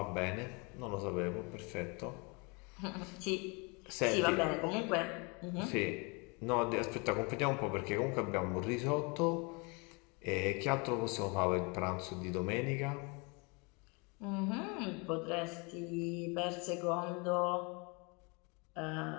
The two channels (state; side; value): quieter; right; 30.7 dB